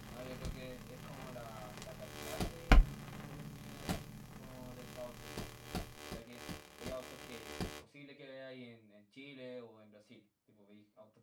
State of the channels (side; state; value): both; identical; correlation 1.00